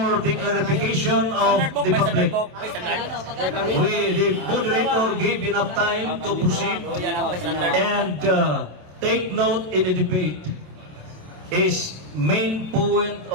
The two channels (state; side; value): late; left; 27 ms